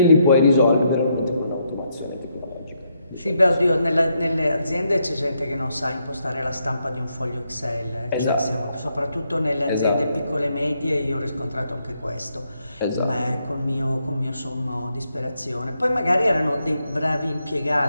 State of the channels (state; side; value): inverted; both; correlation -0.78